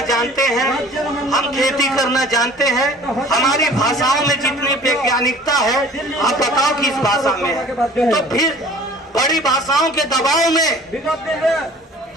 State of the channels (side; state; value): both; normal; correlation 0.48